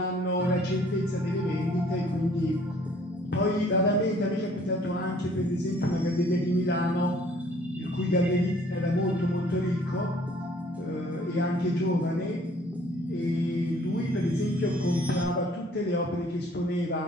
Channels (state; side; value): normal; both; correlation 0.58